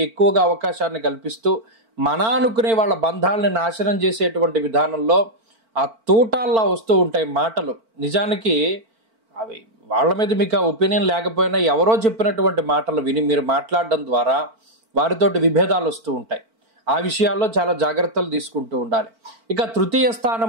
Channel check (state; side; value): late; left; 4.5 ms